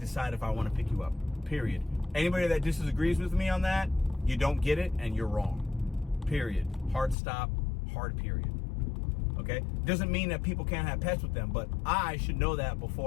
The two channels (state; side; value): drops out; right; at 7.2 s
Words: if I want to pick you up, period. Anybody that disagrees with me on that, you don't get it and you're wrong, period. Hard stop, hard period. Okay? Doesn't mean that people can't have pets with them, but I should know that